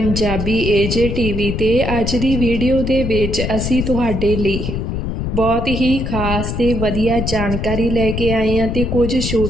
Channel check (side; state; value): left; noise; rumble, 3 dB below the sound